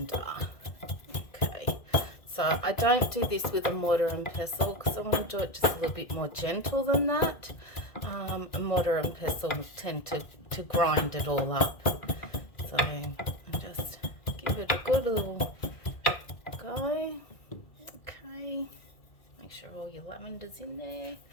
Okay, so I don't do this with a mortar and pestle because I want to do it just a little bit more gentle than that. A mortar and pestle tend to grind it all up. So I just give it a good little go. Okay, make sure all your lavender's in there,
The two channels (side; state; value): right; late; 2.1 ms